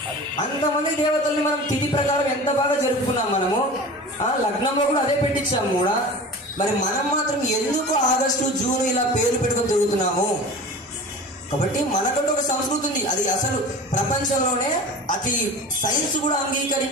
అంతమంది దేవతల్ని మనం తిథి ప్రకారం ఎంత బాగా జరుపుకున్నాం మనము. లగ్నంలో కూడా అదే పెట్టించాము కూడా. మరి మనం మాత్రం ఎందుకు ఆగస్టు జూన్ ఇలా పేర్లు పెట్టుకొని తిరుగుతున్నాము? కాబట్టి మనకంటూ ఒక సంస్కృతి ఉంది. అది అసలు ప్రపంచంలోనే అతి సైన్స్ కూడా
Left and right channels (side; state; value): both; normal; correlation 0.36